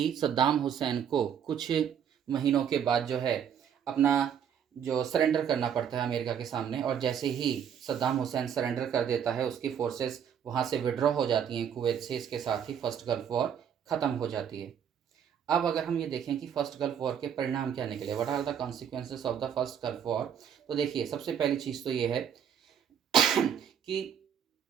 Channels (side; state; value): left; quieter; 8.5 dB